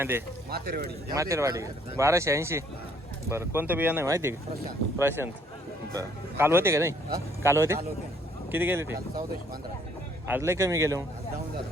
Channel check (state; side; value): normal; both; correlation 0.63